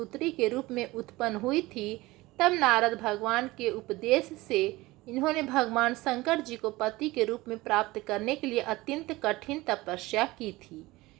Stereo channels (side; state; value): left; quieter; 20.0 dB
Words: के रूप में उत्पन्न हुई थी, तब नारद भगवान के उपदेश से इन्होंने भगवान शंकर जी को पति के रूप में प्राप्त करने के लिए अत्यंत कठिन तपस्या की थी।